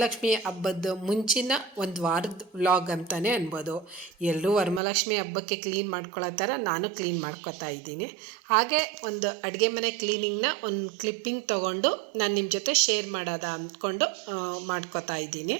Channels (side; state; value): left; drops out; at 4.8 s